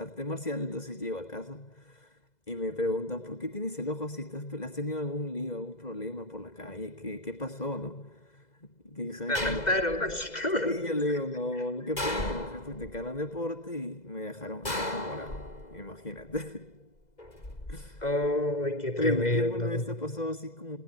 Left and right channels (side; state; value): right; late; 2.0 ms